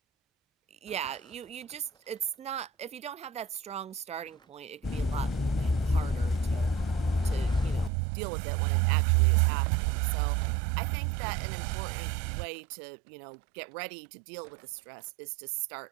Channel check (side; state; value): left; drops out; at 7.9 s